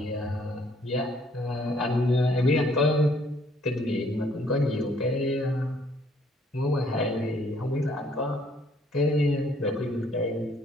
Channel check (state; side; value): normal; both; correlation 0.64